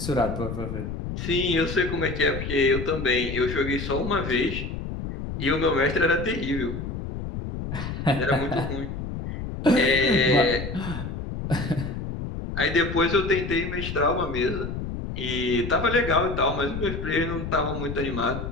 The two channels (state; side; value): noise; left; rumble, 6 dB below the sound